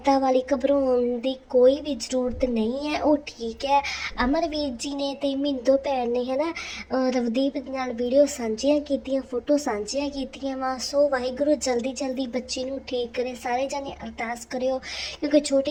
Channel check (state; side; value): identical; both; correlation 1.00